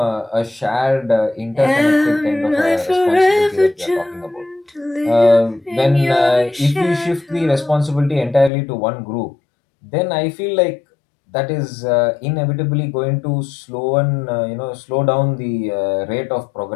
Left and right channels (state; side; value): drops out; right; at 8.5 s